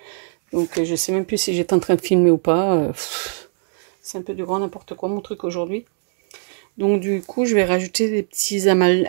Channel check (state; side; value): silent; left; digital silence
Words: Donc, je sais même plus si j'étais en train de filmer ou pas. C'est un peu du grand n'importe quoi, mon truc, aujourd'hui. Donc, du coup, je vais rajouter des petits